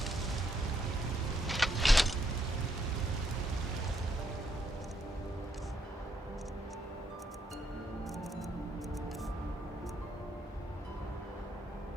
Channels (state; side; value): normal; both; correlation 0.74